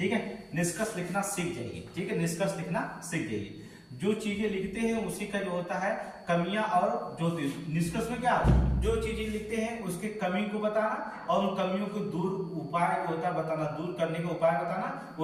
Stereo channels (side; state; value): both; identical; correlation 1.00